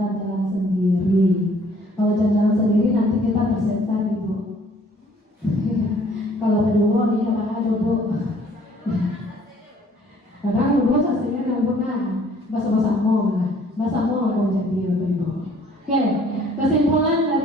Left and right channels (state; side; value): normal; both; correlation 0.58